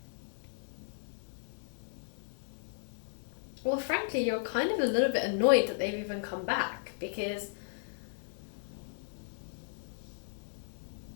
Well, frankly, you're kind of a little bit annoyed that they've even come back, because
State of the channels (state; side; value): silent; right; digital silence